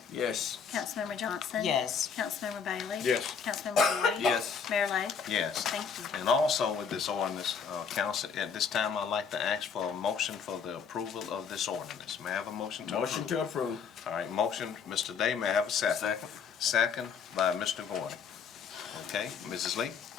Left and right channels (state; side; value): quieter; right; 6.4 dB